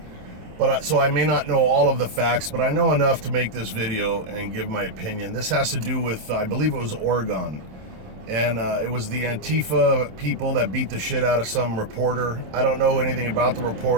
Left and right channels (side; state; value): left; late; 27 ms